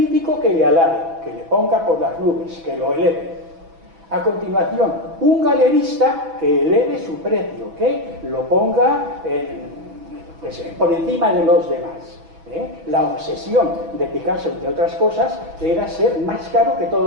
que le alabe, que le ponga por las nubes, que lo eleve. A continuación, un galerista que eleve su precio, que lo ponga por encima de los demás. La obsesión de Picasso, entre otras cosas, era ser más caro que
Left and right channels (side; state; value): left; late; 6.1 ms